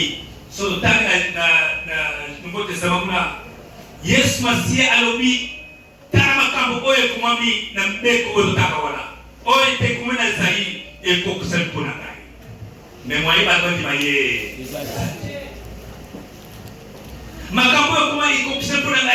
so tanga na Nouveau Testament kuna Yesu Masia alobi tara makambo oyo kumami na mbeko oyo taka wana oyo te kumena zai eko kusali pona ngai mais moi ba ndi maye makambo oyo kuma eko kusali pona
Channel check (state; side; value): identical; both; correlation 1.00